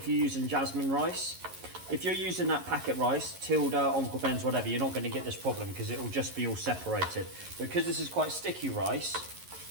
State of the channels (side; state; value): left; late; 11 ms